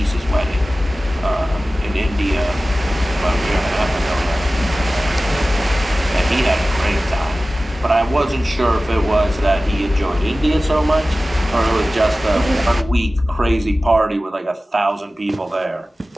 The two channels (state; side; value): normal; both; correlation 0.96